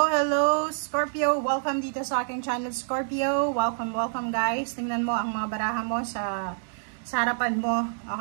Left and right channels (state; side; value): silent; left; digital silence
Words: Scorpio. Welcome dito sa aking channel Scorpio. Welcome guys. Tingnan mo ang mga baraha mo sa harapan mo.